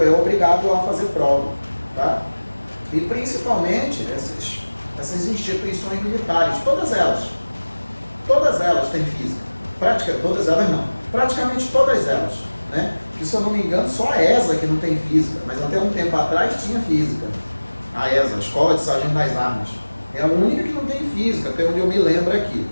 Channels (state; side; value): inverted; both; correlation -1.00